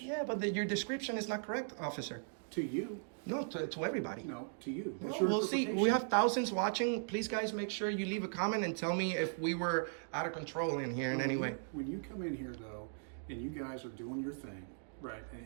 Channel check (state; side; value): silent; left; digital silence